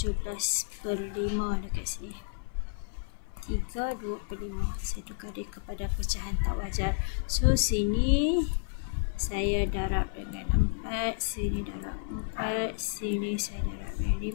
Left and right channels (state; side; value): silent; right; 57 dB below the other